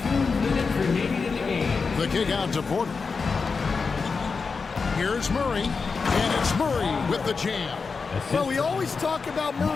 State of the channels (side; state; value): right; quieter; 4.8 dB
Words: minutes remaining in the game. The kick out to Porter. Here's Murray. And it's Murray with the jam. Well, we always talk about